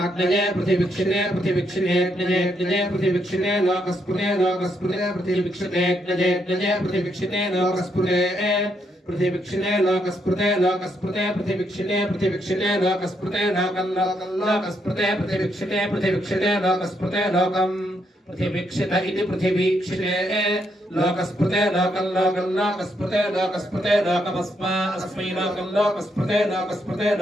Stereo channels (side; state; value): both; normal; correlation 0.77